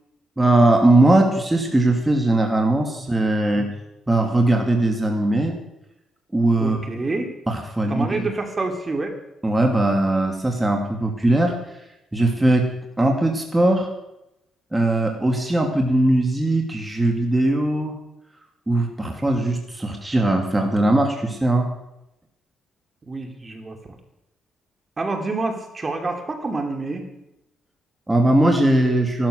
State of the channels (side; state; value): both; normal; correlation 0.87